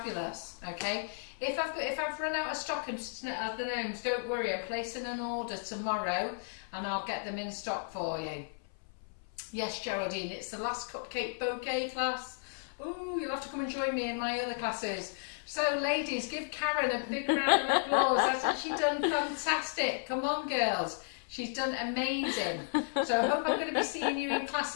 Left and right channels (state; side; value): silent; right; 55 dB below the other